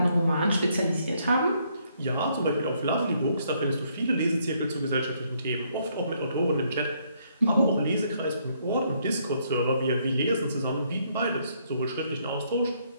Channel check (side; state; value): both; inverted; correlation -0.71